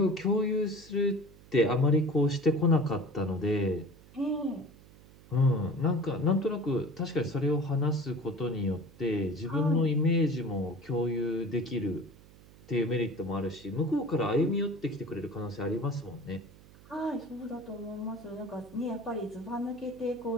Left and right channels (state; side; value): noise; right; hum, 23 dB below the sound